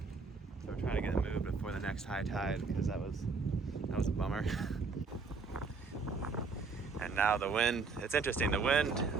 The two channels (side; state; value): left; quieter; 4.6 dB